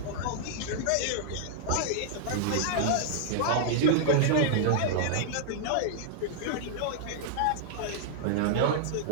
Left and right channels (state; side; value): different; both; correlation -0.01